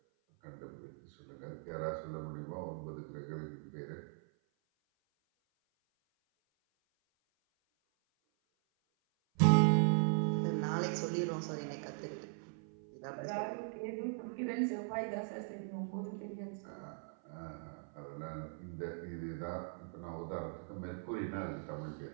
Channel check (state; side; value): silent; left; 51 dB below the other